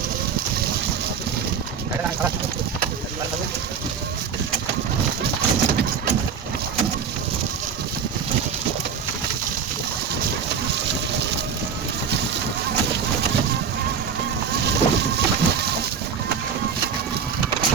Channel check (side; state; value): left; quieter; 6.7 dB